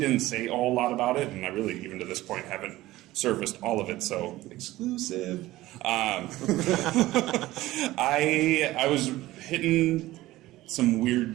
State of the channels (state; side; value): quieter; left; 17.0 dB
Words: say a whole lot about it, and I really, even to this point, haven't surfaced all of it, so exclusive. I was hitting some